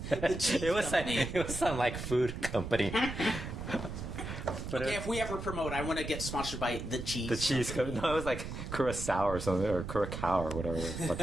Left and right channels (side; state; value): right; noise; rumble, 7 dB below the sound